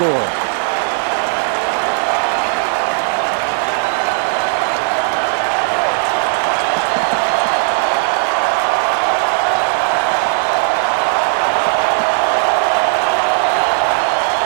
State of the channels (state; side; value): silent; left; 56 dB below the other